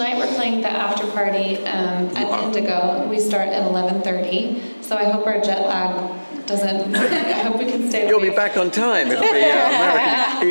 we're playing the after party at Indigo. We start at 11:30. So I hope our jet lag doesn't. I hope we can stay. You'll awake. be back on time. It'll be American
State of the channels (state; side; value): inverted; both; correlation -1.00